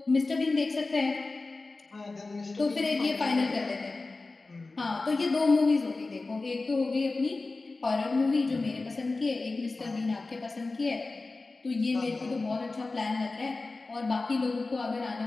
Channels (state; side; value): quieter; right; 3.5 dB